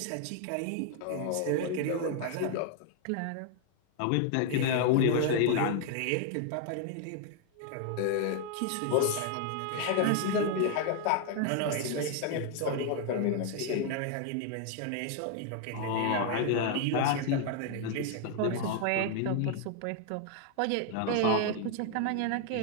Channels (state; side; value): different; both; correlation 0.00